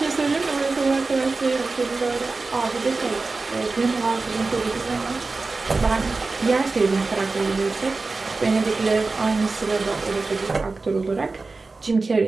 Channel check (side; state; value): left; quieter; 3.8 dB